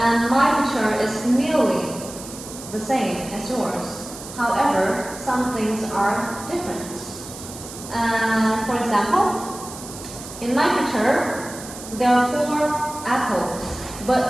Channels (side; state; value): right; noise; hiss, 13 dB below the sound